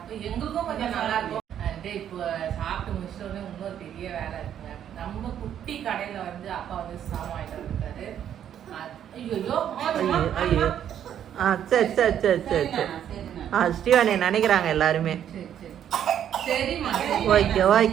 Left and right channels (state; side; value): quieter; left; 9.8 dB